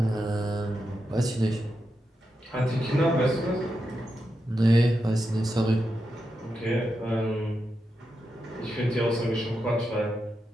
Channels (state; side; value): normal; both; correlation 0.87